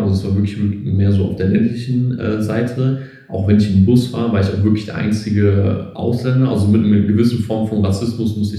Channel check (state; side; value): identical; both; correlation 1.00